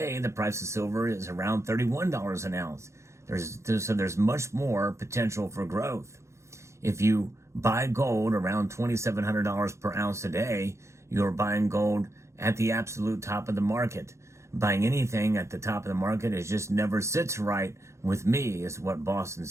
the price of silver is around $31 an ounce. So there's much more potential for growth. If you buy gold around $2,700 per ounce today, you're buying gold at the absolute top of the market. Buying anything at the top of the market is just never sits right with me, is what Boston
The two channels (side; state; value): left; late; 0.14 ms